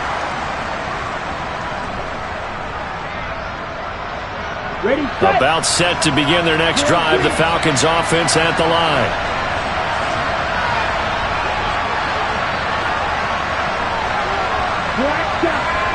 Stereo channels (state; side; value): identical; both; correlation 1.00